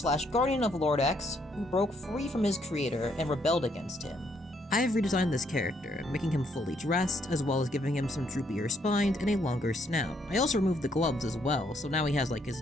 of Lord X who broke free from his creator and rebelled against him. I have redesigned this character, making him fully dressed, as well as giving him some droopier spines and a longer snout. I also removed the gloves as well, so now he has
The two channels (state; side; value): normal; both; correlation 0.71